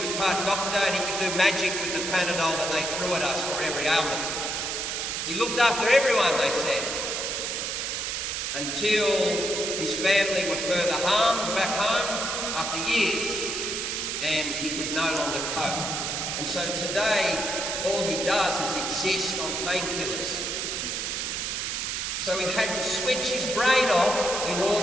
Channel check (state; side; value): noise; right; hiss, 2 dB below the sound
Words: was part doctor, and he could do magic with the Panadol that they threw at us for every ailment. He looked after everyone, they said, until his family were further harmed back home after years, and he could no longer cope. And so today, all he does is exist on painkillers. So he had to switch his brain off in